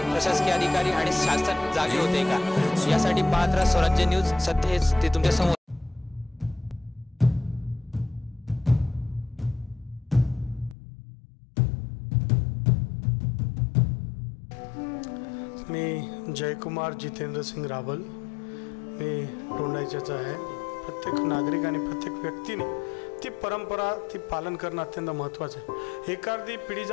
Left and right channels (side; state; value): right; drops out; at 10.8 s